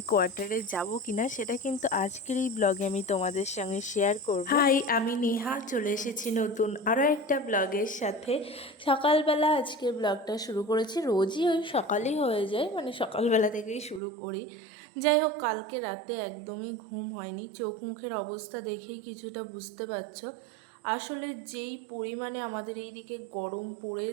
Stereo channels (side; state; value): left; drops out; at 14.0 s